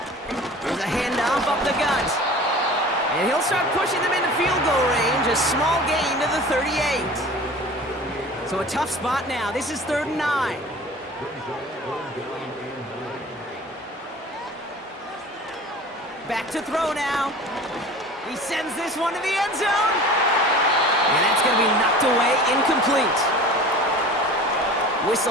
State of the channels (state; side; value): normal; both; correlation 0.40